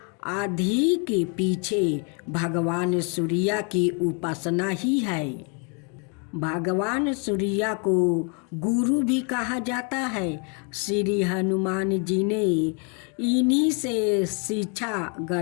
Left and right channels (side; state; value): right; quieter; 37.5 dB